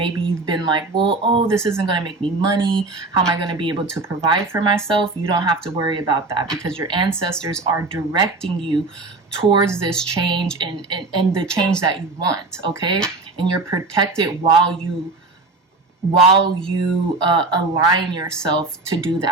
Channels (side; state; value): left; quieter; 3.5 dB